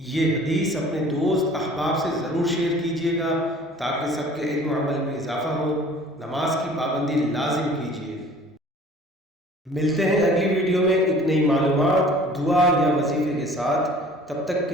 حدیث اپنے دوست احباب سے ضرور شیئر کیجیے گا تاکہ سب کے علم و عمل میں اضافہ ہو۔ نماز کی پابندی لازم کیجیے۔ ملتے ہیں اگلی ویڈیو میں ایک نئی معلومات، دعا یا وظیفے کے ساتھ۔ تب تک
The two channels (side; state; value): both; normal; correlation 0.49